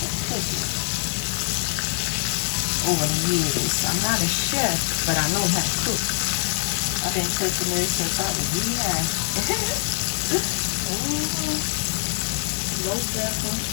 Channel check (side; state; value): right; silent; digital silence